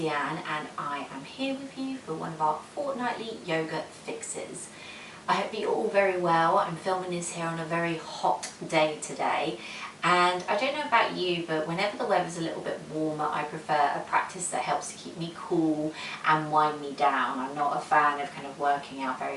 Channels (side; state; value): both; identical; correlation 1.00